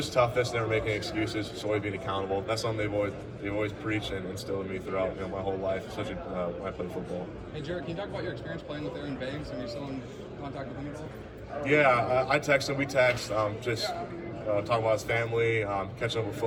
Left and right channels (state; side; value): identical; both; correlation 1.00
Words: toughness, never making excuses, just always being accountable. That's something they've always preached and instilled in me throughout my whole life, especially when I played football. Hey Jarrett, can you talk about your experience playing with Aaron Banks and you're still in contact with him at all? Yeah, I text him. We text, just talking about his family, catching up with